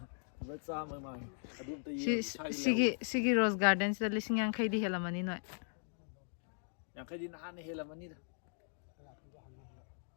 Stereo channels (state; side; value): silent; right; digital silence